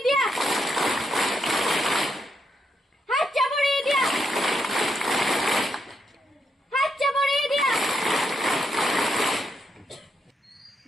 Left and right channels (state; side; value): normal; both; correlation 0.80